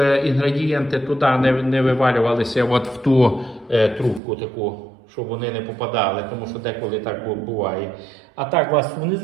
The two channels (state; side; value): drops out; left; at 4.2 s